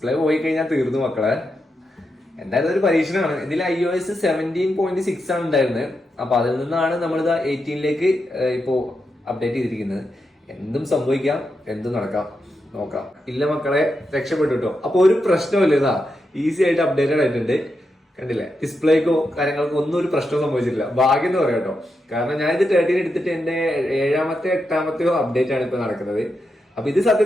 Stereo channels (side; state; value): both; normal; correlation 0.86